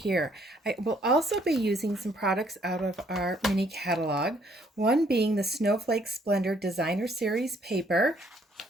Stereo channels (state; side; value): normal; both; correlation 0.66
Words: I will also be using some products out of our mini catalog, one being the Snowflake Splendor Designer Series paper.